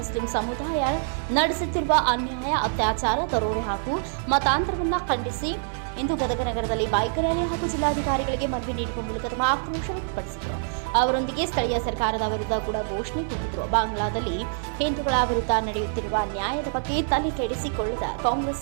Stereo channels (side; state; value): left; silent; digital silence